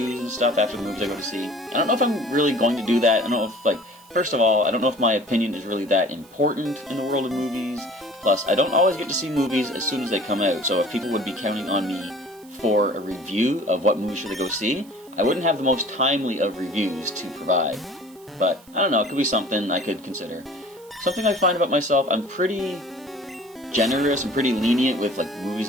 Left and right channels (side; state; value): right; noise; hiss, 26 dB below the sound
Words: and stuff after the movies I go to see. I don't know if I'm really going to do that. I don't know if, first of all, I don't know if my opinion is really that important in the world of movies. Plus, I don't always get to see movies as soon as they come out, so if people would be counting on me for a review of what movie should they go see, I wouldn't have the most timely of reviews to provide. But, I don't know, it could be something I could consider. Something I find about myself, I'm pretty generous and pretty lenient with movies